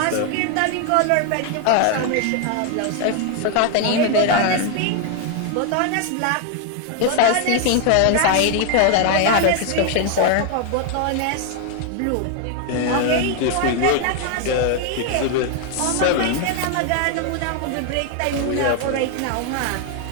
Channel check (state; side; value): different; both; correlation 0.00